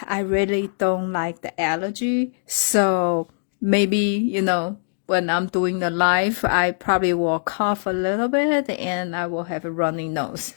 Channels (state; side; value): silent; right; digital silence